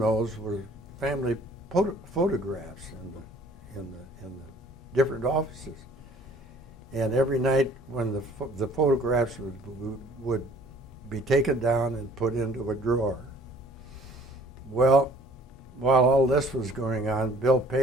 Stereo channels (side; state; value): both; normal; correlation 0.54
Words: were family photographs in the different offices. And every night when the photographs would be taken down and put into a drawer. Well, while all this was going on, Bill